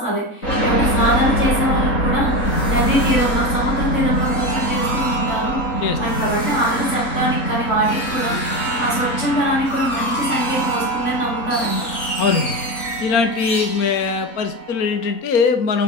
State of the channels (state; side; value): late; right; 3.8 ms